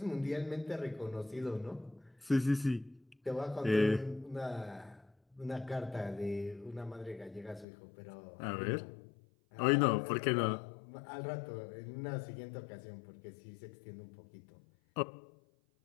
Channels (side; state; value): right; drops out; at 7.7 s